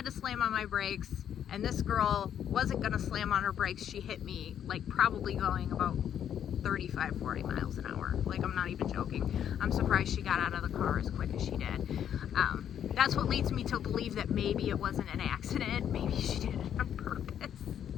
to slam on my brakes, and this girl wasn't gonna slam on her brakes. She hit me like probably going about 35-40 miles an hour. Like, I'm not even joking. I'm surprised she got out of the car as quick as she did. That's what leads me to believe that maybe it wasn't an accident. Maybe she did it on purpose.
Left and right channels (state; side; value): quieter; right; 9.5 dB